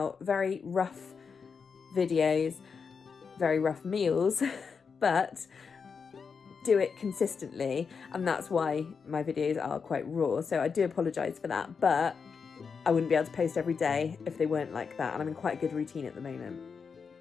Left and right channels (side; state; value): right; quieter; 5.7 dB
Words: very rough videos, very rough meals, but do it consistently, and that's why my videos are quite raw. So I do apologise for that, but I wouldn't be able to post every day if they weren't like that, and I'm in quite a good routine at the moment.